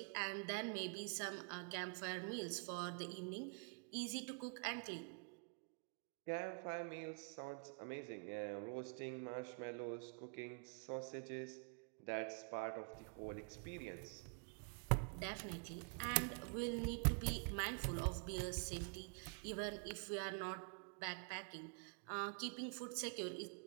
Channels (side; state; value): left; quieter; 39.6 dB